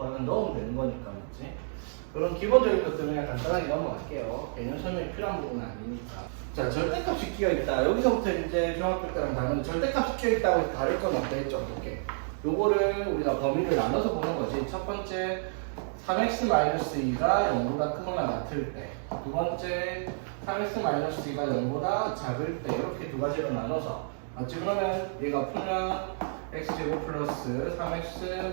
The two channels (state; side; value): silent; left; digital silence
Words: 넣으면 되는 거니까 맞지? 그런 기본적인 것들은 그냥 간단하게 넘어갈게요. 개념 설명이 필요한 부분은 아니니까. 자, 절대값이 끼어있다. 여기서부터 이제 중학교 때랑 다른 절대값이 끼어있다고 다를 건 없겠죠. 어떻게? 요거를 우리가 범위를 나눠서 보는 거지. 첫 번째 3x-2가 0보다 크거나 같을 때, 두 번째 3x-2가 0보다 작을 때, 이렇게 두 가지로 나눠서 맞지? 그러면 얘가 풀면 x제곱 플러스